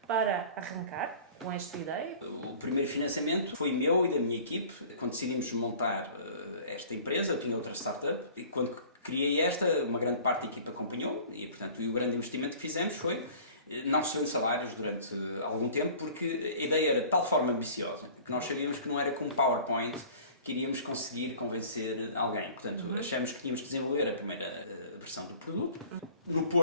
para arrancar com esta ideia? O primeiro financiamento foi meu e da minha equipe. Quando decidimos montar esta empresa, eu tinha outra startup, e quando criei uma grande parte da equipa acompanhou e, portanto, o grande investimento que fizemos foi não recebendo salários durante algum tempo, porque a ideia era de tal forma ambiciosa que nós sabíamos que não era com PowerPoint que iríamos conseguir convencer alguém. Portanto, achamos que tínhamos que desenvolver a primeira versão do produto. No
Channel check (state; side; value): inverted; both; correlation -0.46